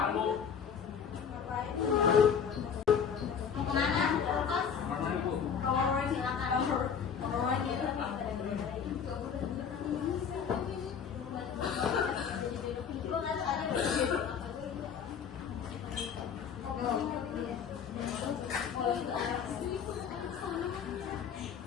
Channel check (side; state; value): right; quieter; 7.2 dB